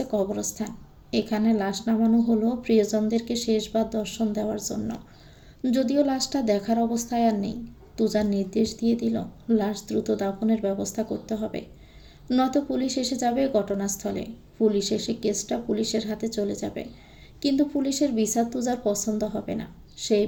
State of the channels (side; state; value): both; identical; correlation 1.00